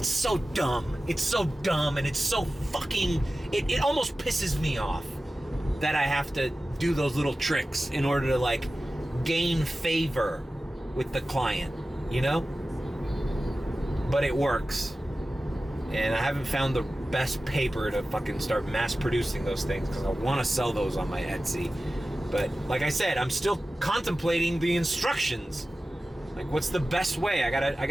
so dumb. It's so dumb, and it's so fucking... It almost pisses me off that I have to do those little tricks in order to, like, gain favor with the client, you know? But it works. And I haven't found the best paper to fucking start mass producing those things, because I want to sell those on my Etsy. But like I said, I'm still contemplating the instructions. Like, what's the best way? I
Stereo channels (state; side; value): normal; both; correlation 0.95